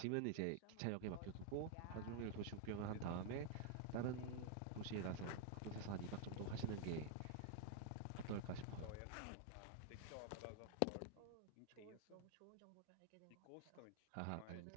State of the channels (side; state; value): both; different; correlation 0.00